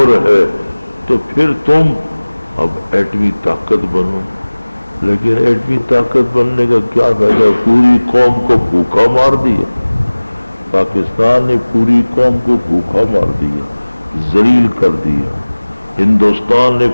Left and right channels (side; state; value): both; inverted; correlation -1.00